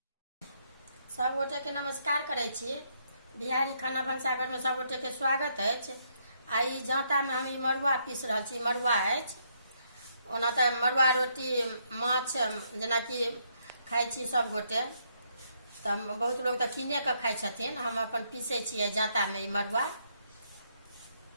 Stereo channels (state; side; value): inverted; both; correlation -0.74